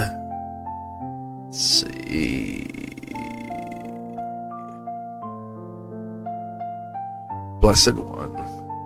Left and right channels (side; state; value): both; identical; correlation 1.00